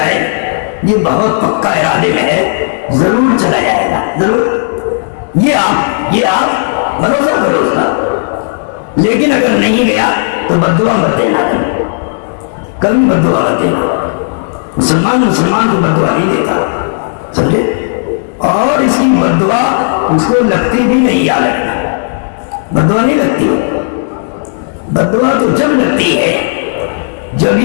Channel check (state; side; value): silent; right; digital silence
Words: یہ بہت پکا ارادے میں ہے، ضرور چلا جائے گا، ضرور۔ یہ آپ بھروسہ کرو اس کا۔ لیکن اگر نہیں گیا تو بددعا مت دینا، کبھی بددعا مت دینا۔ مسلمان کو بددعا نہیں دیتا، سمجھے؟ اور اس کی بددعا اس کو لگتی بھی نہیں، یاد رکھنا، بددعا نہیں لگتی۔ بددعا تو جب لگتی ہے جب